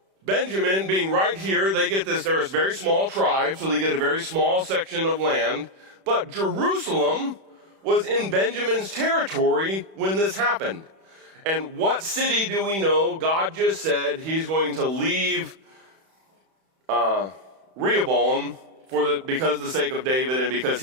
Benjamin being right here, they get this, they're a very small tribe, so they get a very small section of land. But Jerusalem was in Benjamin's territory when this happened. And what city do we know? God just said he's going to leave Rehoboam because of the sake of David and because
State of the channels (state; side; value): late; left; 31 ms